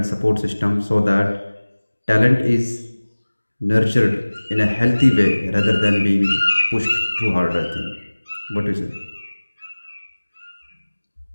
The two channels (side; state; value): both; inverted; correlation -1.00